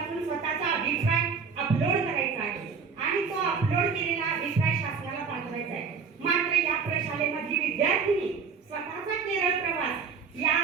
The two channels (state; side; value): quieter; left; 5.7 dB